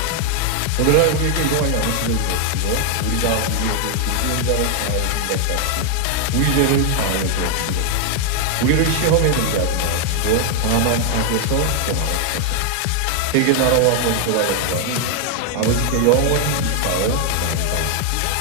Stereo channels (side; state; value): both; different; correlation 0.00